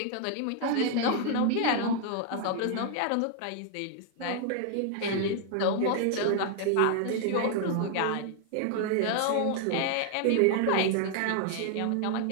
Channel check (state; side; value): different; both; correlation 0.00